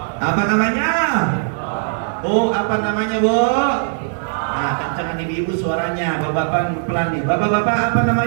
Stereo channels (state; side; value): silent; left; digital silence